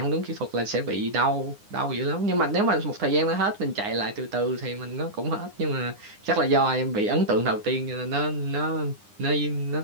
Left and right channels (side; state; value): left; late; 9.8 ms